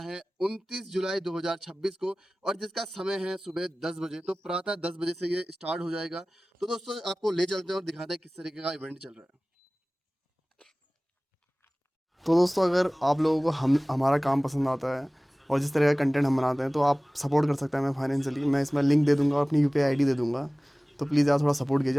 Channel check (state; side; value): normal; both; correlation 0.98